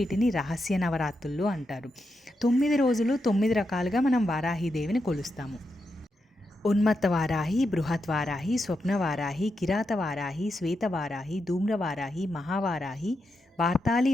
రహస్య నవరాత్రులు అంటారు. 9 రోజులు 9 రకాలుగా మనం వారాహిదేవిని కొలుస్తాము. ఉన్మత్త వారాహి, బృహత్ వారాహి, స్వప్న వారాహి, కిరాత వారాహి, శ్వేత వారాహి, ధూమ్ర వారాహి, మహావారాహి, వార్తాళి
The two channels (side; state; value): both; normal; correlation 0.85